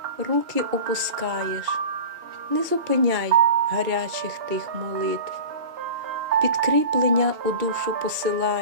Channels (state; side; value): late; left; 2.3 ms